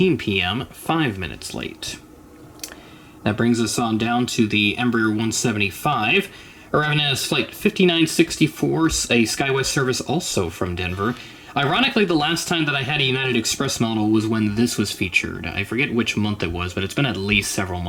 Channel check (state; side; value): identical; both; correlation 1.00